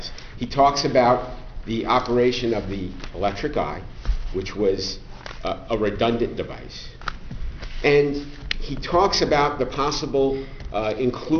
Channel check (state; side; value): identical; both; correlation 1.00